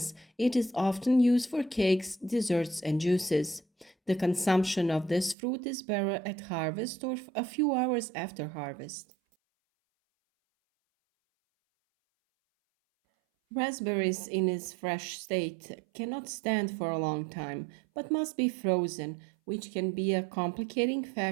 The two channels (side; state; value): left; drops out; at 5.4 s